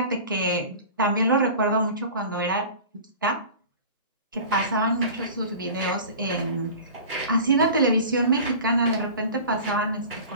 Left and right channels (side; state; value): both; inverted; correlation -0.38